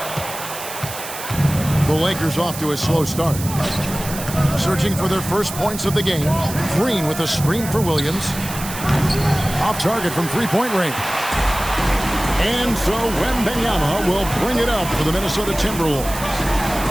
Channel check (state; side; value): noise; right; hiss, 10 dB below the sound